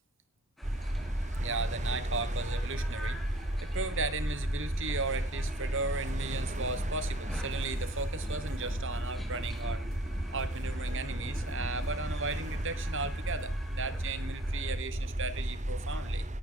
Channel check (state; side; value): normal; both; correlation 0.53